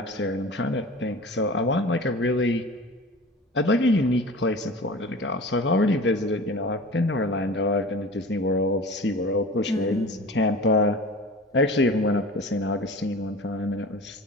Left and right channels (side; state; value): both; normal; correlation 0.37